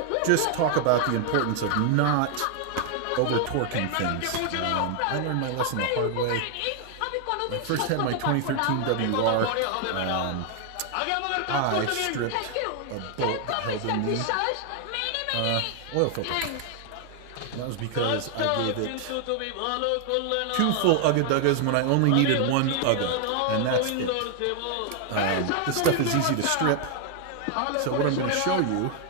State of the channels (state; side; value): different; both; correlation 0.00